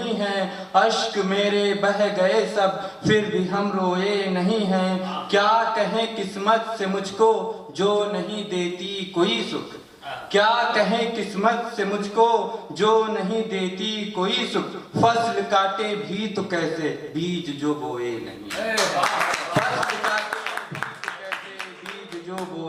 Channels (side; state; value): both; identical; correlation 1.00